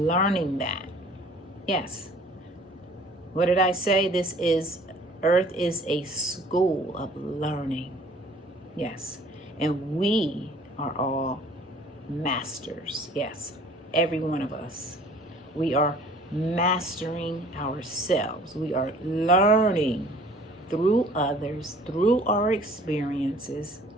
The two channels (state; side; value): normal; both; correlation 0.52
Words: that. Yes. What did I say? Earth is a school of learning. Yes. And we are all masters. Yes. Every one of us. We are mastering ourselves. We are learning through others, through our experiences.